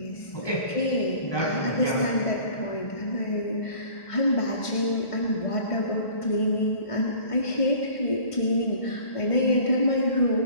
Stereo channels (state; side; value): late; right; 1.5 ms